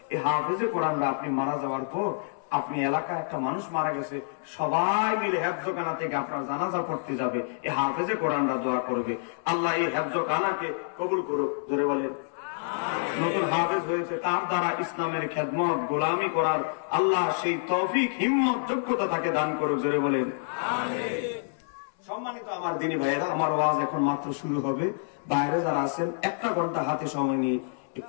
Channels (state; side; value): silent; right; 59 dB below the other